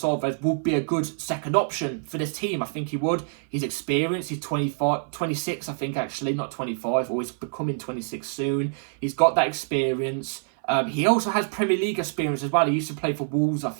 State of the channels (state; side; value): silent; left; 56 dB below the other